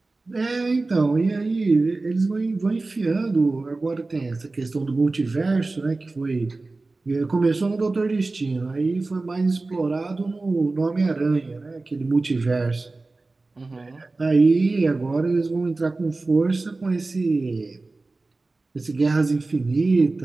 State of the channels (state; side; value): quieter; left; 3.4 dB